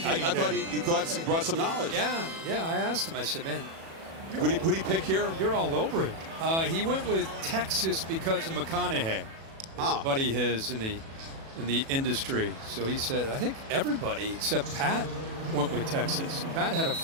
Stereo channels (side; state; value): left; late; 37 ms